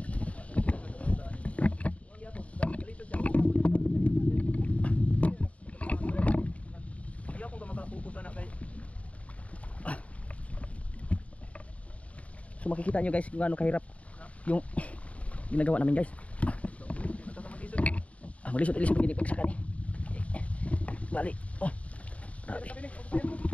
So makikita nyo guys kung gaano kahirap yung ginagawa namin guys. Maglisod-lisod gini pag saka ni. Bali. Oh. Grabe.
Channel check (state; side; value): late; right; 0.066 ms